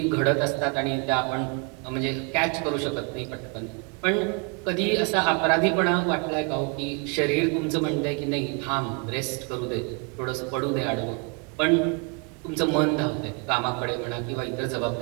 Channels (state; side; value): quieter; left; 33.5 dB